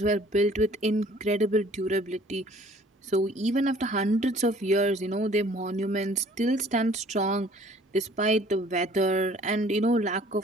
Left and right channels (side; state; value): both; normal; correlation 0.54